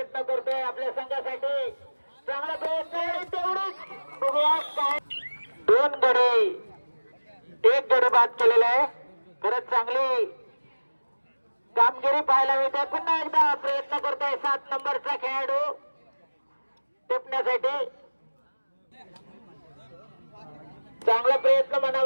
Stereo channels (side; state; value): both; inverted; correlation -1.00